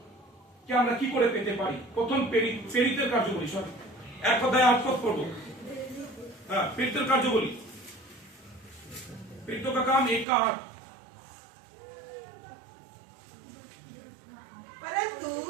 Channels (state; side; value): drops out; left; at 10.2 s